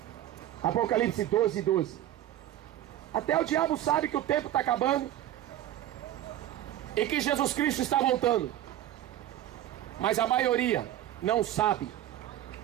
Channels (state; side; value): quieter; left; 12.7 dB